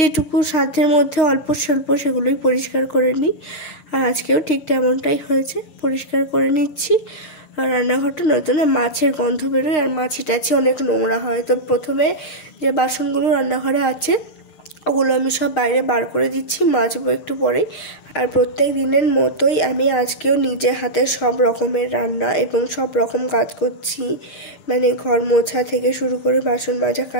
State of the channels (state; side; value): late; right; 6.5 ms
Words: সাধ্যের মধ্যে অল্প স্বল্প সেগুলোই পরিষ্কার করে নিই। আর আজকেও ঠিক তেমনটাই হয়েছে, পরিষ্কার করে নিচ্ছি। আর রান্নাঘরটা নয়তো না মাছের গন্ধ বেরোয়, আর মাছি টাছি অনেক নোংরা হয়। তো প্রথমে যে বাসনগুলো রান্নাঘরে আছে ওগুলো আমি সব বাইরে বার করে দিচ্ছি, মাজবো একটু পরেই। আর প্রত্যেক দিনের মতোই আমি আজকেও নিজে হাতে সব রকমের রান্না এবং সব রকম কাজ করছি, ঘর মোছা থেকে শুরু করে বাসন মাজা,